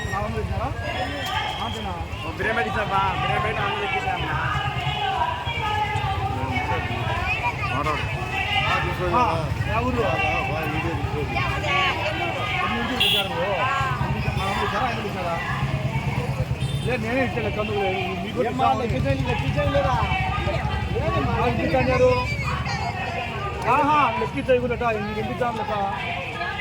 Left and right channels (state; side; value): identical; both; correlation 1.00